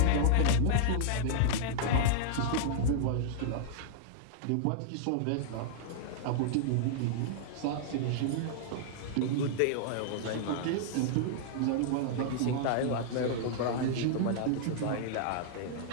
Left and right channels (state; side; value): different; both; correlation -0.01